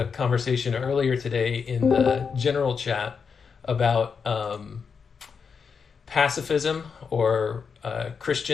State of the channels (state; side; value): quieter; right; 5.9 dB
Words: conversation earlier today in the general chat about pacifism or